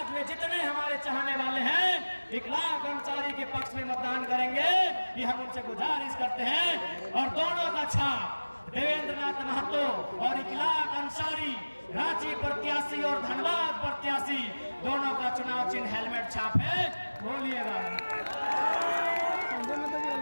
में जितने हमारे चाहने वाले हैं इकलाक अंसारी के पक्ष में मतदान करेंगे, ये हम उनसे गुजारिश करते हैं। और दोनों का छाप देवेंद्र नाथ महतो और इकलाक अंसारी, रांची प्रत्याशी और धनबाद प्रत्याशी, दोनों का चुनाव चिन्ह हेलमेट छाप है। बोलिएगा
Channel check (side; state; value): both; inverted; correlation -1.00